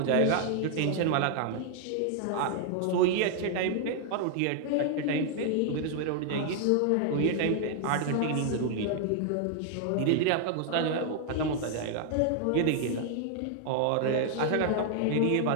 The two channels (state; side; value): different; both; correlation 0.00